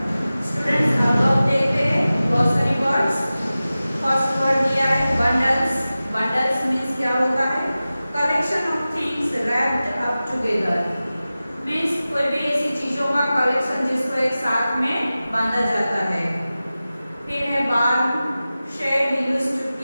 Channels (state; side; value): inverted; both; correlation -0.96